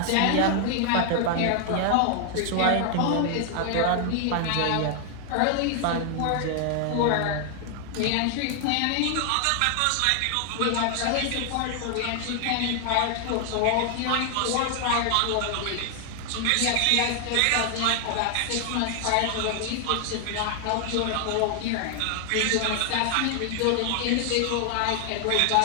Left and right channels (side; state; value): both; different; correlation 0.00